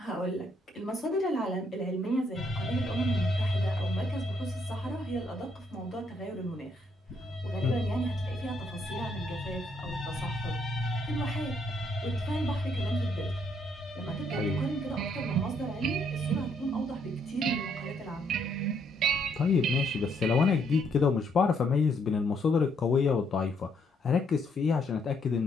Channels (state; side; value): normal; both; correlation 0.71